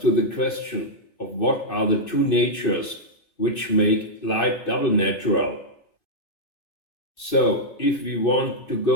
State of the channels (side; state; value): right; late; 2.6 ms